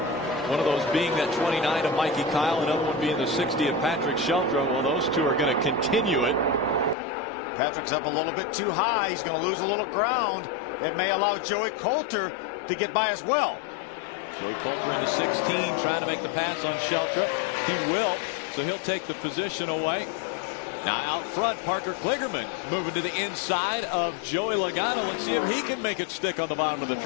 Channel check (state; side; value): drops out; right; at 7.0 s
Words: One of those being that 29 of Mikey Kyle, another one being the 60 of Patrick Sheltra. Well, those two are going to continue it. Patrick's up a little bit too high. He's going to lose a little ground. It may allow Joey Coulter to get by as well. Joey Coulter in the 16 trying to make the pass on Sheltra. He will, so he'll take the position away. Now out front, Parker Kligerman moving to the inside of Joey Logano. Let's see if he can make it stick on the bottom of the